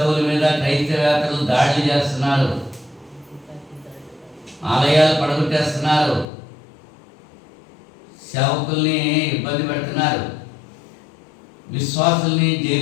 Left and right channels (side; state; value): right; drops out; at 6.2 s